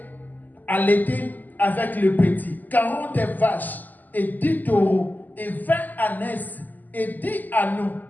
allaitaient avec le petit, 40 vaches et 10 taureaux et 20 ânesses et 10 agneaux.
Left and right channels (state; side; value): late; right; 0.084 ms